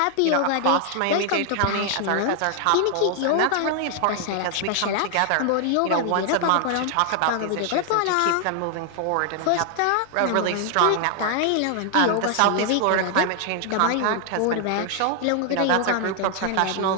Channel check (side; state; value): both; different; correlation 0.00